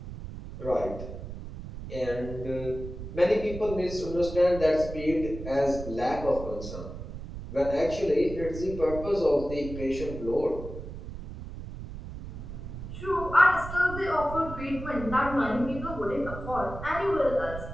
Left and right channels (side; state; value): right; noise; rumble, 10 dB below the sound